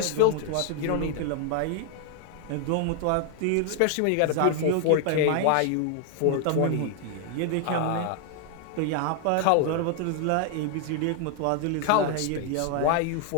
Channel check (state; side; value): different; both; correlation 0.00